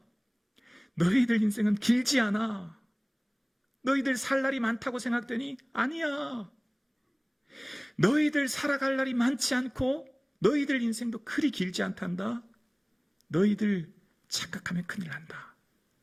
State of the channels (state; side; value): identical; both; correlation 1.00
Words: 너희들 인생은 길지 않아. 너희들 살 날이 많다고 생각되니? 아니야. 너희들 살아갈 날이 많지 않고 너희들 인생도 그리 길지 않단다. 너희들 착각하면 큰일 난다.